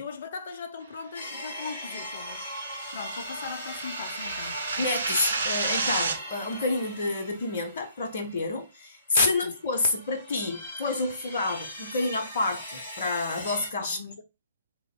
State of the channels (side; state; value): both; inverted; correlation -0.63